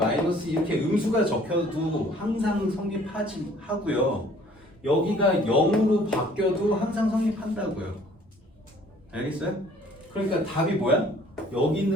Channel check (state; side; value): normal; both; correlation 0.56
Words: 2 이렇게 음수가 적혀도 항상 성립하지 하고요. 여기가 0으로 바뀌어도 항상 성립한다고요. 알겠어요? 그러니까 답이 뭐야? 여기